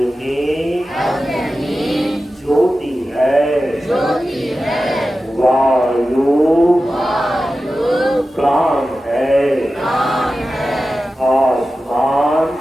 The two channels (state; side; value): normal; both; correlation 0.93